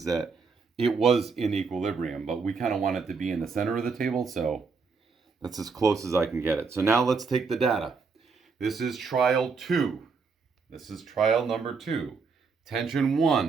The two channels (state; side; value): quieter; left; 5.0 dB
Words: that it was in equilibrium, but we kind of want it to be in the center of the table, so that's as close as I can get it. So now let's take the data. This is trial 2. This is trial number 2. Tension